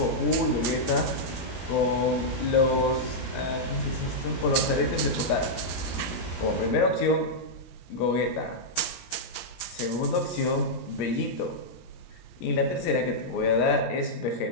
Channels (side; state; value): right; late; 17 ms